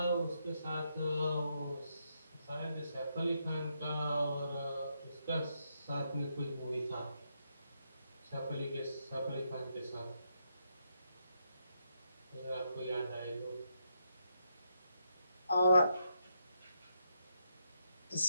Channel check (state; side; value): inverted; both; correlation -0.79